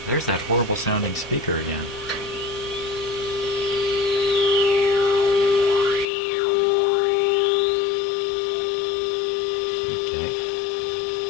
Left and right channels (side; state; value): right; drops out; at 6.1 s